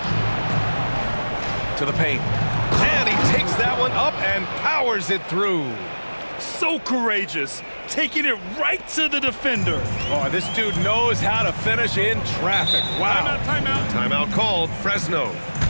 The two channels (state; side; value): inverted; both; correlation -1.00